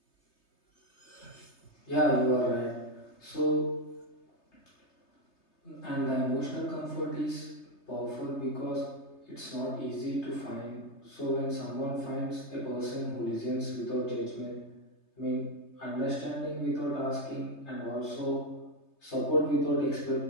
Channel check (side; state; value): right; late; 3.3 ms